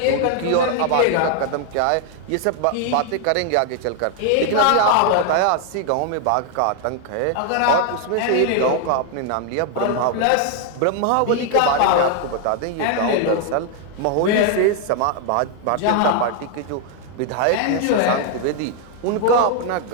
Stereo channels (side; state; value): both; different; correlation 0.00